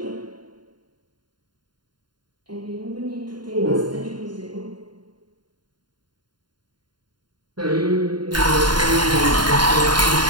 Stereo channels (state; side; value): late; left; 0.71 ms